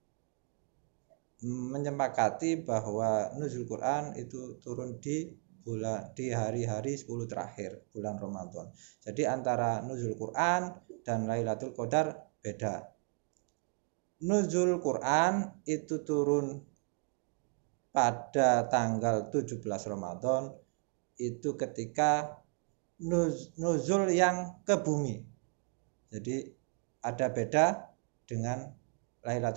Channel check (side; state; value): left; quieter; 39.3 dB